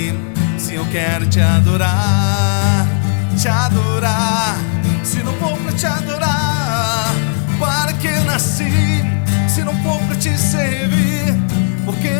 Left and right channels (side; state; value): right; silent; 57 dB below the other